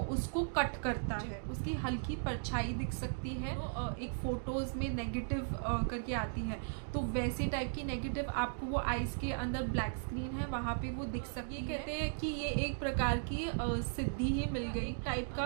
उसको कट करता है। उसकी हल्की परछाई दिख सकती है। तो एक फ़ोटोज़ में नेगेटिव करके आती है, तो वैसे टाइप की नेगेटिव आपको वो आइज़ के अंदर ब्लैक स्क्रीन है वहाँ पे वो दिख सकती है। कहते हैं कि ये एक प्रकार की सिद्धि ही मिल गई टाइप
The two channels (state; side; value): silent; left; digital silence